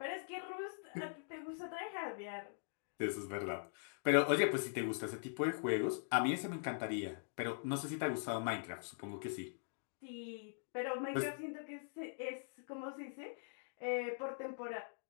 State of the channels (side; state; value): right; silent; digital silence